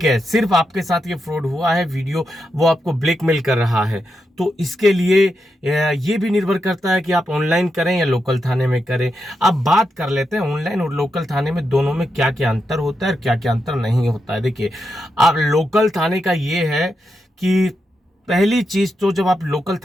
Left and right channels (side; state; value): both; normal; correlation 0.85